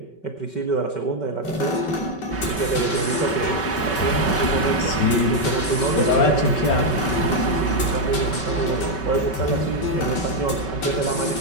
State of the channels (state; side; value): late; right; 5.3 ms